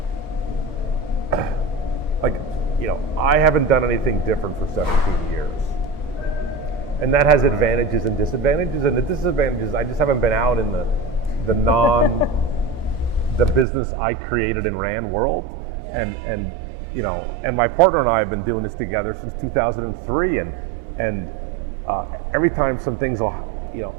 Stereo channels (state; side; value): drops out; left; at 13.7 s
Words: like, I haven't done anything different for 17 years. And that has advantages and disadvantages. And the disadvantages, I just haven't been out in the business I created and ran world. Yeah. And my partner and I have been doing this together since 2003. And every time some things will,